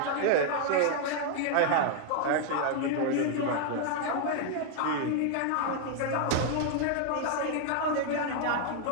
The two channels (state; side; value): different; both; correlation 0.00